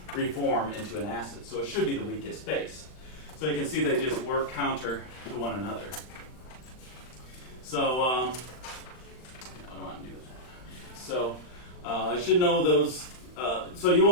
reform into an acid. So it should be the weakest base. So you can see they just work counter to one another. So what do I want to do with that? So I should know those. So you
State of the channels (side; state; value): right; late; 39 ms